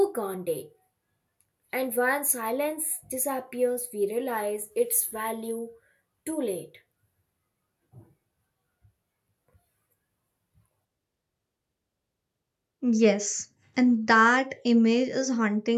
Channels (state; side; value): identical; both; correlation 1.00